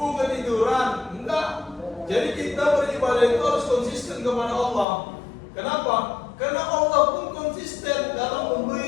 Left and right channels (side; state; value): right; drops out; at 4.9 s